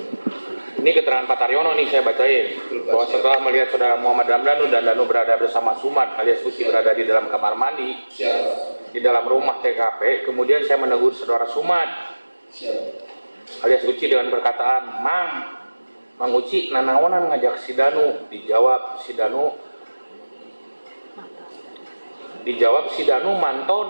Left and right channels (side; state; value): both; inverted; correlation -1.00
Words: Ini keterangan Pak Taryono nih saya bacain, bahwa setelah melihat saudara Muhammad Ramdhanu dan Danu berada bersama Sumad alias Uci berada di dalam kamar mandi di dalam rumah TKP, kemudian saya menegur saudara Sumad alias Uci dengan perkataan, Mang Uci nanaonan ngajak si Danu. Dijawab si Danu mantau